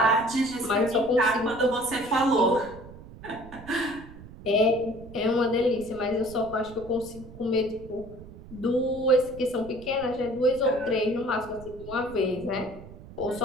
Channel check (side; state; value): right; noise; rumble, 17 dB below the sound